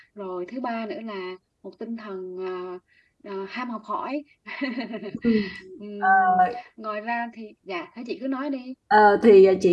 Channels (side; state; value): both; identical; correlation 1.00